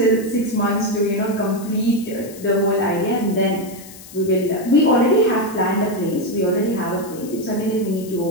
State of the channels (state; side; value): noise; left; hiss, 18 dB below the sound